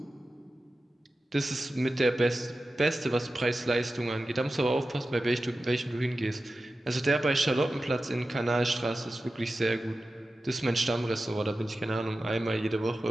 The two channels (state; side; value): normal; both; correlation 0.94